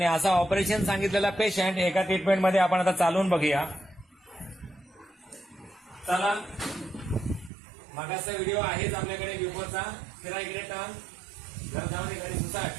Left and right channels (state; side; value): drops out; left; at 7.5 s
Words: असा ऑपरेशन सांगितलेला पेशंट एका ट्रीटमेंटमध्ये आपण आता चालवून बघूया. चला, मागाचा व्हिडिओ आहेच आपल्याकडे बिफोरचा. फिरा इकडे टर्न. घर जाऊन घरी